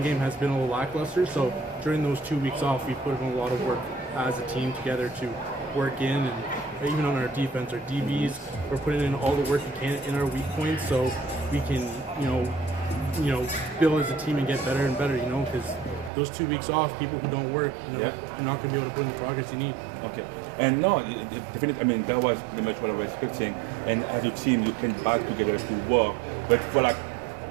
game has been a little lackluster. So during those 2 weeks off, we put in a lot of work as a team together to work in, and even on our defense, our DBs, we're putting in all the work we can in our weak points so we can, build as a team and get better and better, because those 2 weeks off, people who don't work, you're not going to be able to put in the progress you need. Okay. And no, definitely, I mean, that was pretty much what I was expecting. And as a team, you came back together to work. But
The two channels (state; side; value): drops out; left; at 16.1 s